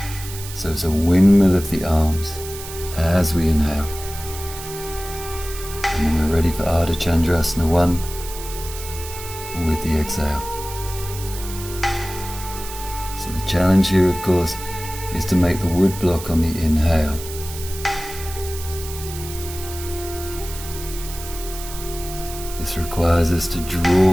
So it's a windmill of the arms as we inhale, and then we're ready for Ardha Chandrasana 1 with the exhale. So the challenge here, of course, is to make the wood block on the inhale. This requires us to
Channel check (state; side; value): noise; right; hiss, 12 dB below the sound